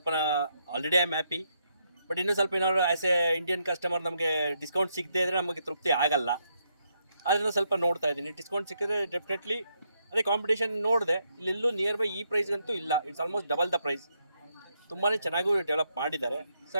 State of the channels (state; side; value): inverted; both; correlation -0.78